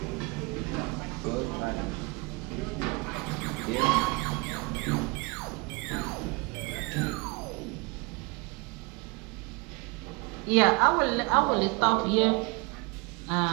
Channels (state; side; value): quieter; left; 27.6 dB